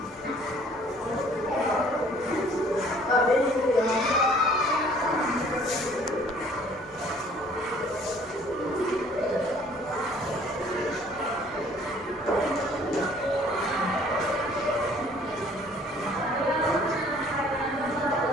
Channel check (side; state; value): both; normal; correlation 0.56